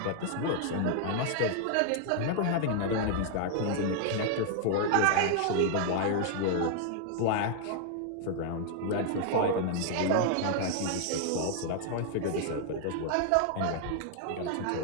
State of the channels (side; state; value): both; different; correlation 0.00